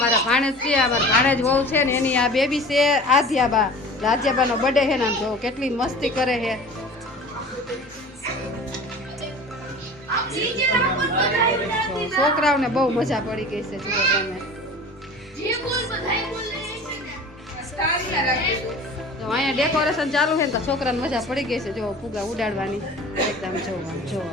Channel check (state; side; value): normal; both; correlation 0.40